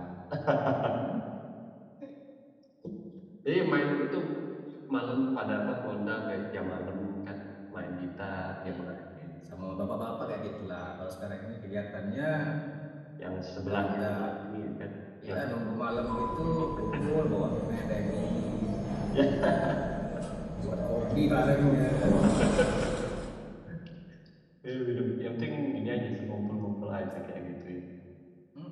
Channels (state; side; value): identical; both; correlation 1.00